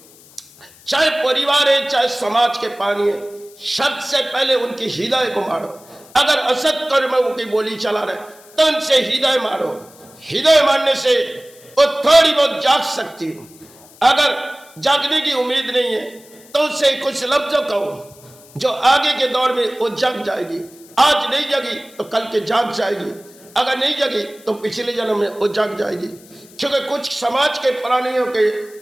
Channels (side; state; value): left; noise; hiss, 24 dB below the sound